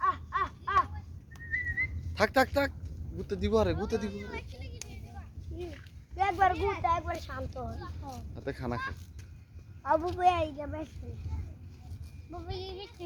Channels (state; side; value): identical; both; correlation 1.00